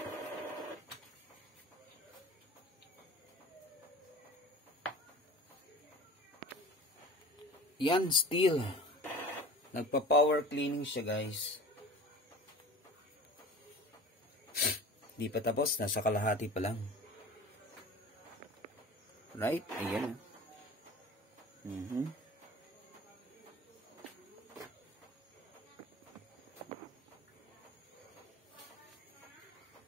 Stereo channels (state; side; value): normal; both; correlation 0.40